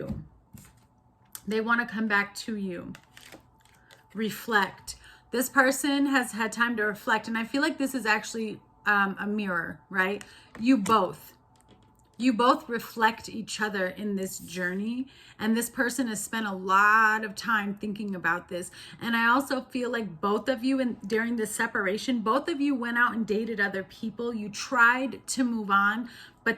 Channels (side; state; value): both; identical; correlation 1.00